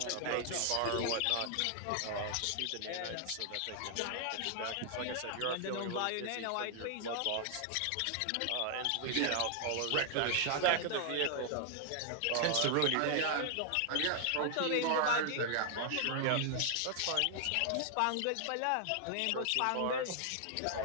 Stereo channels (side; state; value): both; different; correlation 0.00